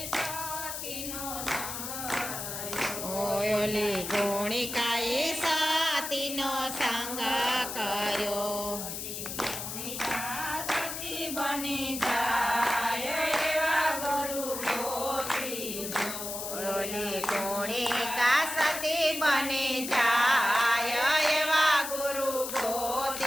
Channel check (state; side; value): noise; left; hiss, 6 dB below the sound